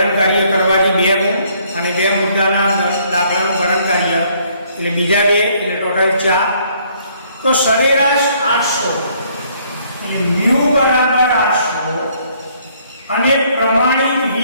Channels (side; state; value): both; inverted; correlation -0.64